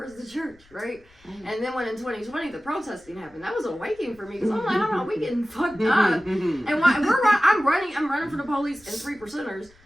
the church, right? And then when in 2020 the protesting happened, that was awakening for me because I'm like, hold on, we getting fucked up. And I'm running from the police and 3%ers.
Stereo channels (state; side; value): noise; left; rumble, 28 dB below the sound